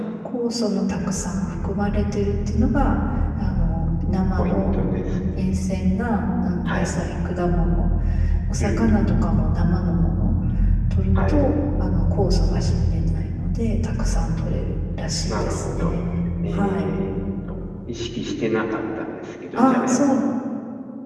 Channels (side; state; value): both; identical; correlation 1.00